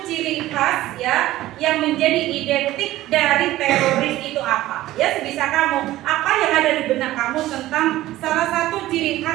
ciri khas ya yang menjadi identik dari teroris itu apa? Ya, sebisa kamu. Apa yang ada di benak kamu tentang salah satu ciri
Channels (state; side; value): quieter; left; 15.7 dB